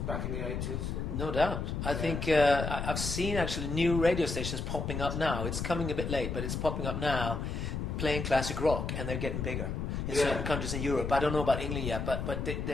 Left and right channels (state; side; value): noise; left; rumble, 3 dB below the sound